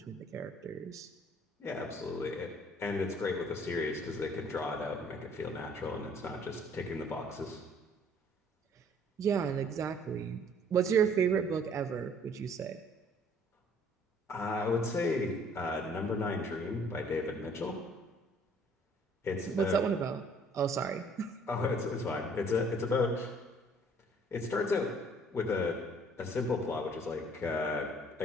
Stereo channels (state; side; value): normal; both; correlation 0.58